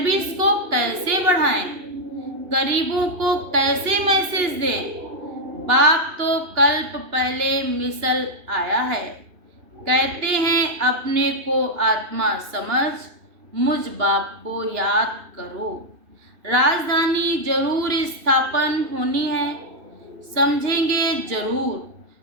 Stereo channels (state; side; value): late; left; 2.8 ms